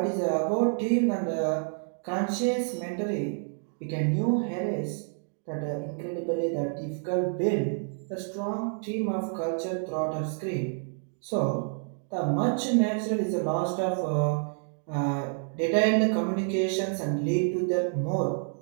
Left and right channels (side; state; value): left; silent; 59 dB below the other